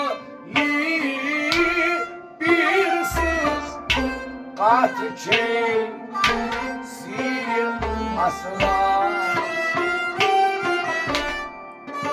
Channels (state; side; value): identical; both; correlation 1.00